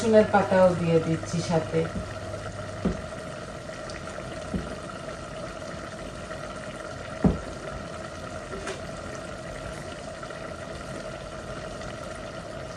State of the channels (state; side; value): identical; both; correlation 1.00